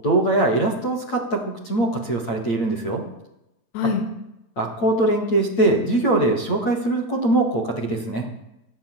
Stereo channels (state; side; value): late; right; 8.7 ms